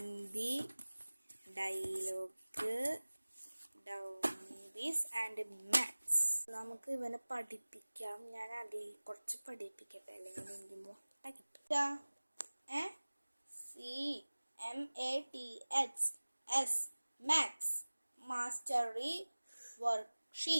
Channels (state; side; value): inverted; both; correlation -1.00